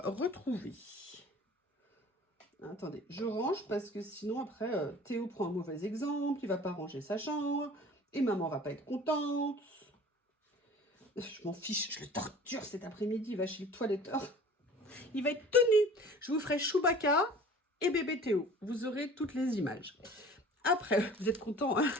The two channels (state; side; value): normal; both; correlation 0.45